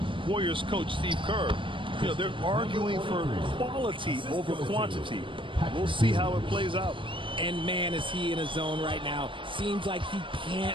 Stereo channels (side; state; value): left; late; 0.25 ms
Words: Warriors coach Steve Kerr. They're arguing for quality over quantity. We'll see how it plays out. And, man, is he in a zone right now. Seems like he